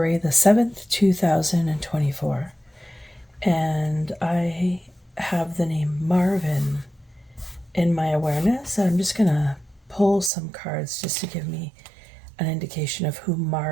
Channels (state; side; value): drops out; left; at 10.3 s